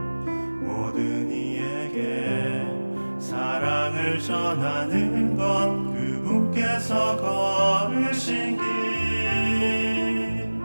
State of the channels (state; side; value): inverted; both; correlation -1.00